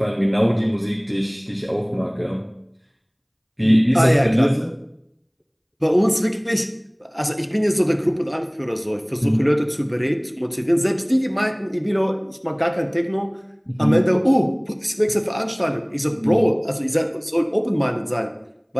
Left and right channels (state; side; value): identical; both; correlation 1.00